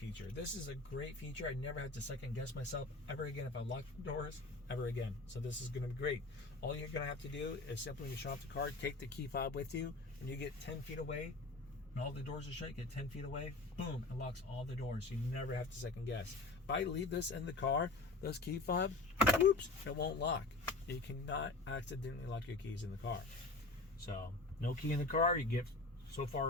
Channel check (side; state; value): right; quieter; 3.2 dB